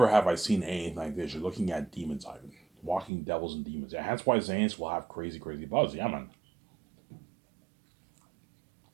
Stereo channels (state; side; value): drops out; left; at 3.1 s